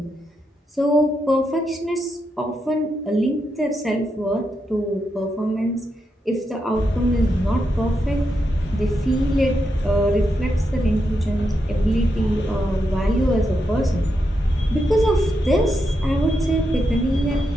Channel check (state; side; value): normal; both; correlation 0.84